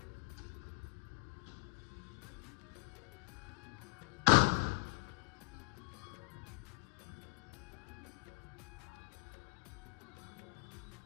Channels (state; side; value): quieter; right; 28.6 dB